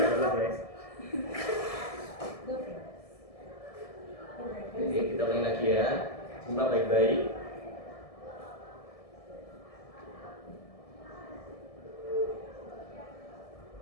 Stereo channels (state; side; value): late; right; 1.7 ms